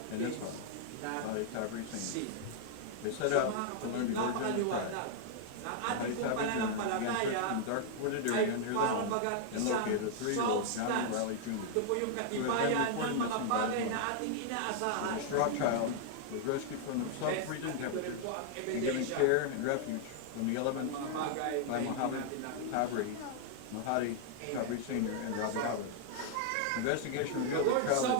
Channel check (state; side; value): different; both; correlation 0.00